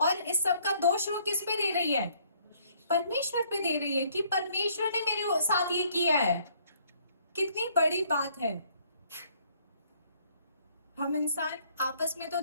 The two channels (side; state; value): both; inverted; correlation -0.63